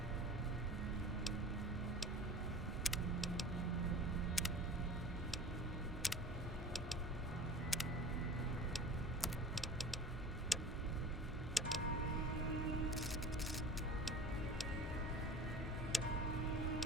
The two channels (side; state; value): both; normal; correlation 0.39